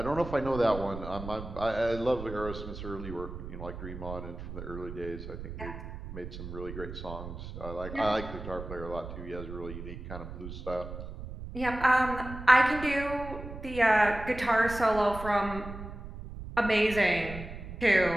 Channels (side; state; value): right; noise; rumble, 10 dB below the sound